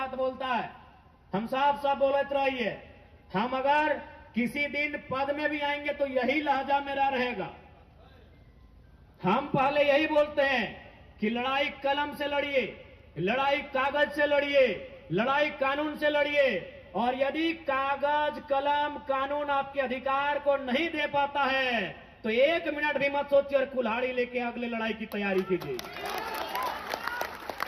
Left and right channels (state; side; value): identical; both; correlation 1.00